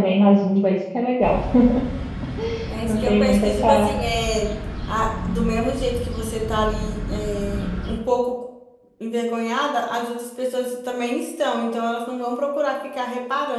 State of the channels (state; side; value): identical; both; correlation 1.00